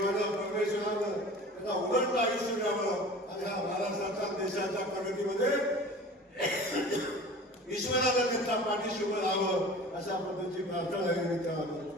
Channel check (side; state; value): both; normal; correlation 0.40